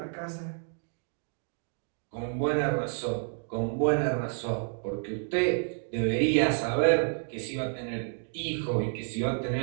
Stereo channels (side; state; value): left; silent; digital silence